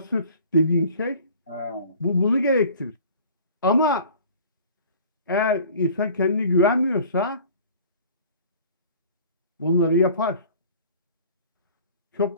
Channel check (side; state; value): both; inverted; correlation -0.47